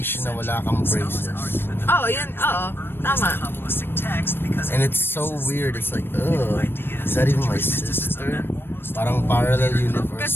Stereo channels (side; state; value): right; late; 0.10 ms